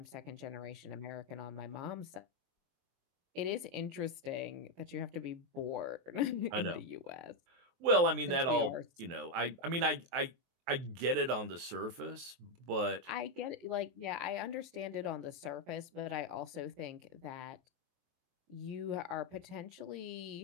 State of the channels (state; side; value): late; left; 23 ms